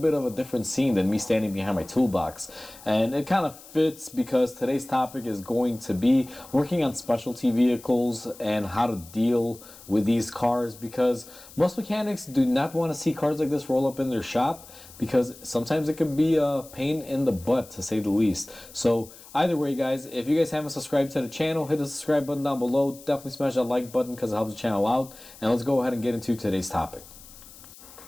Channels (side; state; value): left; noise; hiss, 20 dB below the sound